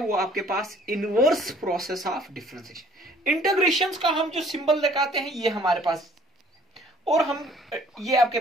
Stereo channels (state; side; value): normal; both; correlation 0.56